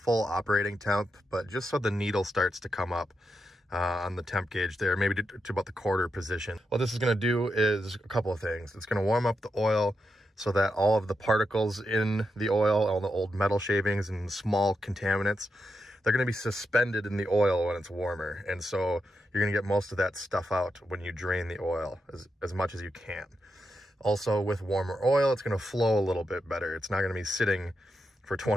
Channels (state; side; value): normal; both; correlation 0.85